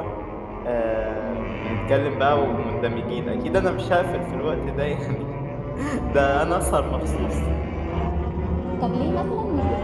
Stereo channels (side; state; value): both; identical; correlation 1.00